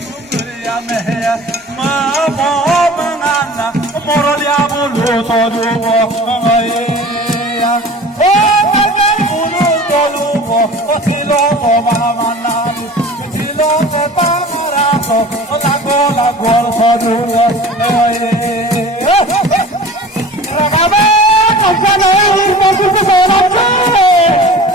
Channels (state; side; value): normal; both; correlation 0.40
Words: kuriya meya ma mo mangana morolia bulu todu ya o magal bulu todu silo ko mana la gol sadu regama kancana ini masuk ke dalam